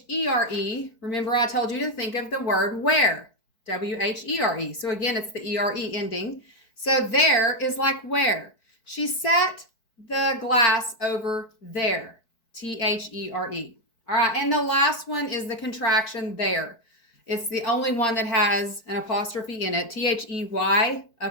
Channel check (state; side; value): late; right; 4.6 ms